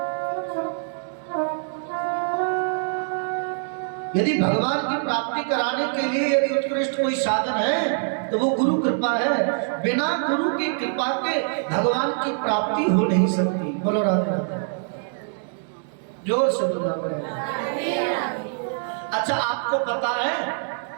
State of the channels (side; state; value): left; silent; 62 dB below the other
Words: यदि भगवान की प्राप्ति कराने के लिए यदि उत्कृष्ट कोई साधन है तो वो गुरु कृपा है। बिना गुरु की कृपा के भगवान की प्राप्ति हो नहीं सकती। बोलो राधे राधे, जोर से बोलना पड़ेगा। अच्छा, आपको पता है